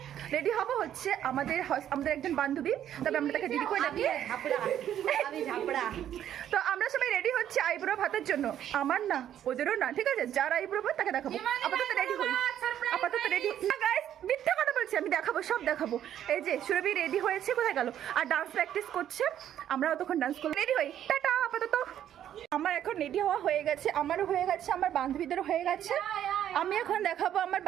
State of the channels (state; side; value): quieter; left; 10.7 dB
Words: রেডি হবো হচ্ছে আমাদের একজন বান্ধবী, তবে আমরা তাকে দিদি করে ডাকি। তো আমরা সবাই রেডি হচ্ছি আইব্রো ভাতের জন্য, আমার না ওদেরও না, ঠিক আছে? যার আইব্রো ভাত তাকে দেখাবো। আপাতত রেডি হই, আপাতত রেডি না গাইস, মিথ্যা কথা বলছি, আমি দেখাবো, সব দেখাবো। এই যে সুরভি রেডি হয়েছে, কোথায় গেল? আর ডান্স প্র্যাকটিস করছে, আমরাও তখন ডান্স করবো। রেডি হই, টাটা। আপাতত আমার এখন রেডি হওয়া হয়ে গেছে, আমারও হয়ে গেছে, আমার বান্ধবীদেরও হয়ে গেছে। আমি এখন দেখাবো আমার